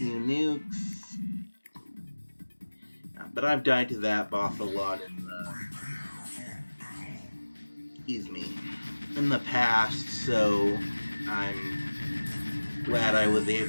nukes. But I've died to that boss a lot in the past, so I'm glad I was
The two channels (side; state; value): both; inverted; correlation -1.00